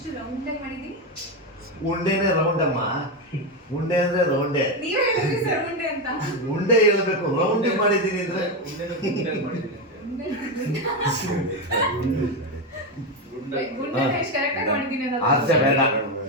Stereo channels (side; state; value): both; normal; correlation 0.10